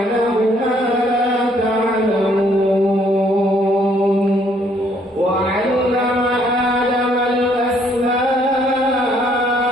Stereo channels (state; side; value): normal; both; correlation 0.66